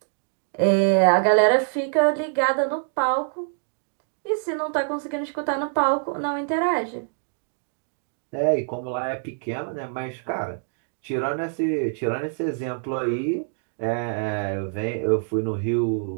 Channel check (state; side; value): silent; left; 62 dB below the other